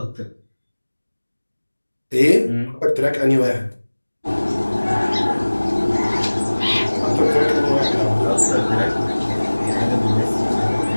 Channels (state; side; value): inverted; both; correlation -1.00